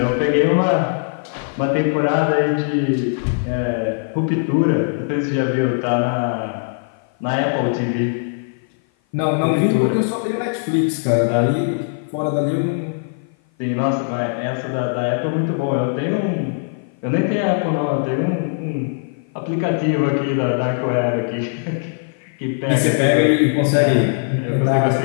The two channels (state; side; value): silent; right; 55 dB below the other